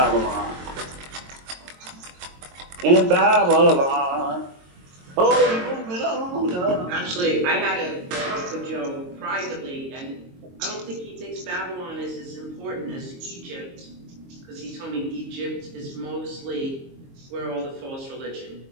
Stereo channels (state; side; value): late; left; 22 ms